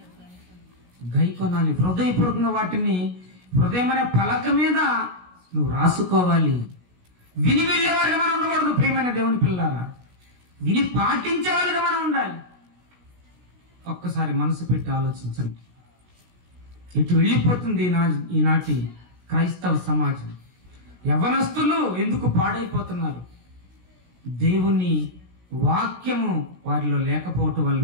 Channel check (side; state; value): left; late; 16 ms